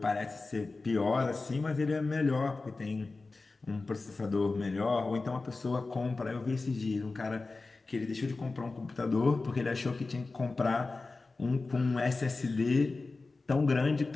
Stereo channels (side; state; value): right; quieter; 3.6 dB